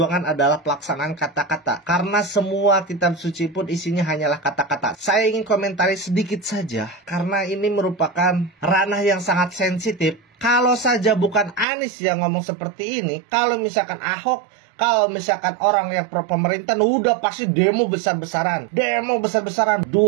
adalah pelaksanaan kata-kata. Karena semua kitab suci pun isinya hanyalah kata-kata. Saya ingin komentari sedikit saja, karena ini merupakan ranah yang sangat sensitif. Kalau saja bukan Anies yang ngomong seperti ini, kalau misalkan Ahok, kalau misalkan orang yang pro pemerintah, udah pasti demo besar-besaran. 212,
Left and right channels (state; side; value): drops out; left; at 11.7 s